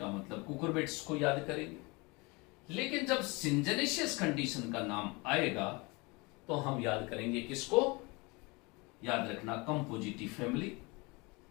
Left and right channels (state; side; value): quieter; right; 26.7 dB